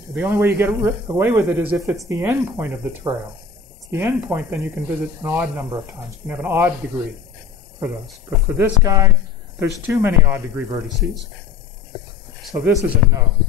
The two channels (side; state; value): right; quieter; 5.4 dB